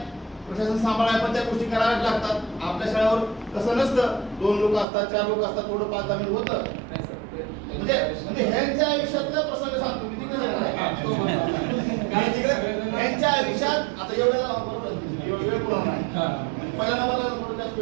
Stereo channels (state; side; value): drops out; left; at 4.9 s